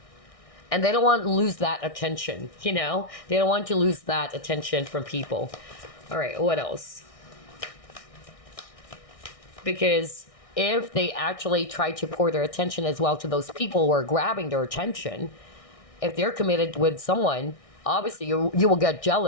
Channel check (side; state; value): right; late; 1.6 ms